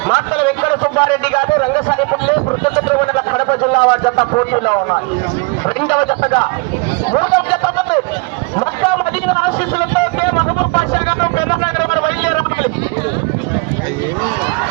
మాతల వెంకట సుబ్బారెడ్డి గారు రంగసానిపల్లి వృద్ధచంద్ర మండల కడప జిల్లా జత పోటీలో ఉన్నారు. రెండవ జతగా మూడవ జత మొత్తం అధిక ఆశీస్సులతో మహబూబ్ పాషా గారు పెద్దనగరం వారు బయలుదేరాలి.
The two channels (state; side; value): quieter; left; 29.1 dB